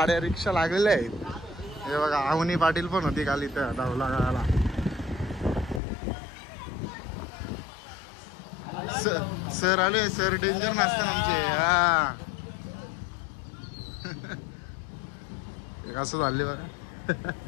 रिक्षा लागलेल्या आहेत. हे बघा आवनी पाटील पण होती काल इथं धावला गावाला. सर आले. सर डेंजर नसतात आमचे. हा असं झाले बघा.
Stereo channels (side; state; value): right; drops out; at 5.8 s